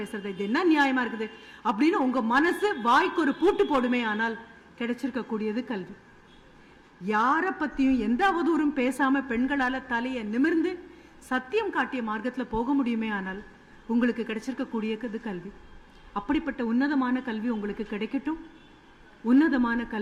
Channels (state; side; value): identical; both; correlation 1.00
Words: இது என்ன நியாயமா இருக்குது அப்படின்னு உங்க மனசு வாய்க்கு ஒரு பூட்டு போடுமே ஆனால் கிடைச்சிருக்க கூடியது கல்வி. யார பத்தியும் எந்த அவதூறும் பேசாம பெண்களால தலையை நிமிர்ந்து சத்தியம் காட்டிய மார்க்கத்துல போக முடியுமே ஆனால் உங்களுக்கு கிடைச்சிருக்க கூடியது கல்வி. அப்படிப்பட்ட உன்னதமான கல்வி உங்களுக்கு கிடைக்கட்டும். உன்னதமான